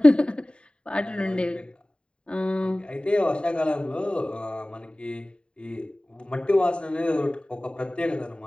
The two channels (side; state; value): right; late; 0.052 ms